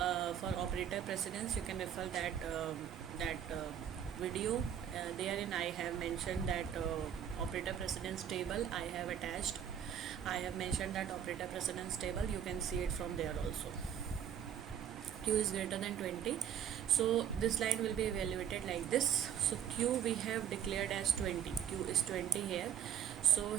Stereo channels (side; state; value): left; quieter; 9.2 dB